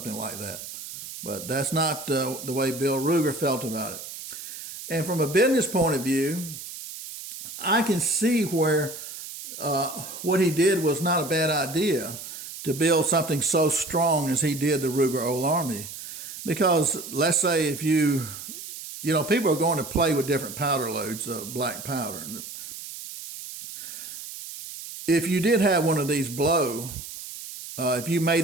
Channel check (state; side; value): noise; right; hiss, 11 dB below the sound